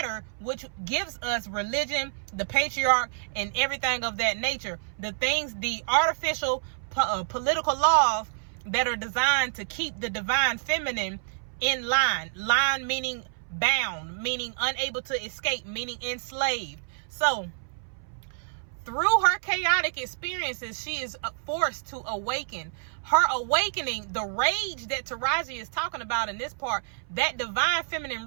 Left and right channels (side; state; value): left; silent; 59 dB below the other